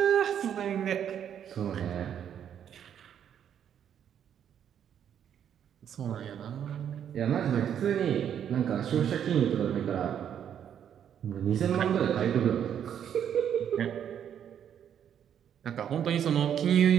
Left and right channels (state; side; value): quieter; left; 9.1 dB